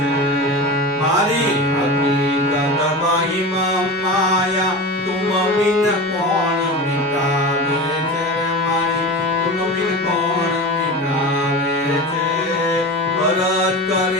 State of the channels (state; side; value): normal; both; correlation 0.28